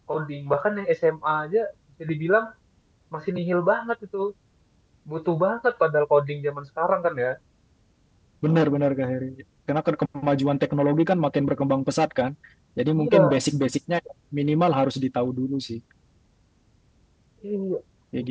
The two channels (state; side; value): identical; both; correlation 1.00